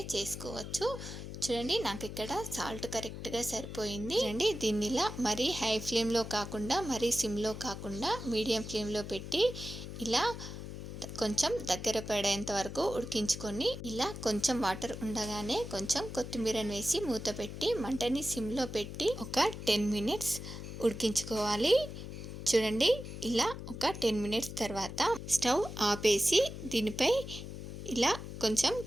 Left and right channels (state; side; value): noise; left; hum, 9 dB below the sound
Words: చేసుకోవచ్చు. చూడండి, నాకు ఇక్కడ సాల్ట్ కరెక్ట్గా సరిపోయింది. చూడండి, దీన్ని ఇలా మరీ హై ఫ్లేమ్లో కాకుండా మరీ సిమ్లో కాకుండా మీడియం ఫ్లేమ్లో పెట్టి ఇలా కొంచెం దగ్గర పడేంత వరకు ఉడికించుకొని ఇలా కొంచెం వాటర్ ఉండగానే కొంచెం కొత్తిమీరని వేసి మూత పెట్టి మంటని సిమ్లో పెట్టి ఒక 10 మినిట్స్ ఉడికించుకోవాలి. చూడండి, ఇలా ఒక 10 మినిట్స్ తర్వాత స్టవ్ ఆపేసి దీనిపై ఇలా కొంచెం